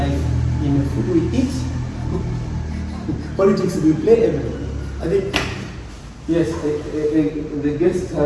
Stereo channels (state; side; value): identical; both; correlation 1.00